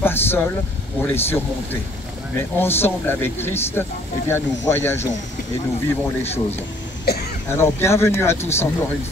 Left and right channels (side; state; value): both; normal; correlation 0.59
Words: pas seuls pour les surmonter. Mais ensemble avec Christ, eh bien, nous voyageons et nous vivons les choses. Alors, bienvenue à tous encore une